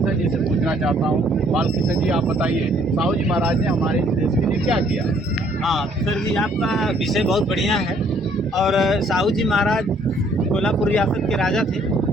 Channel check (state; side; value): normal; both; correlation 0.63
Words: जी से पूछना चाहता हूँ। बालकिशन जी, आप बताइए, साहू जी महाराज ने हमारे देश के लिए क्या किया? हाँ सर जी, आपका विषय बहुत बढ़िया है। और साहू जी महाराज कोल्हापुर रियासत के राजा थे।